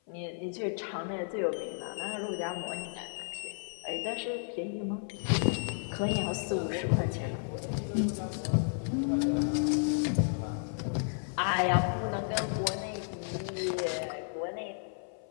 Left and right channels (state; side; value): silent; right; 56 dB below the other